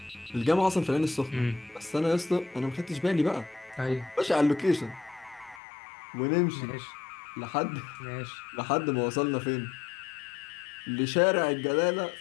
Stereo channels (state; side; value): drops out; right; at 5.6 s